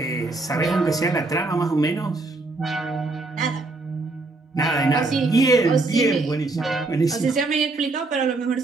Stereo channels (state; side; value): quieter; left; 3.3 dB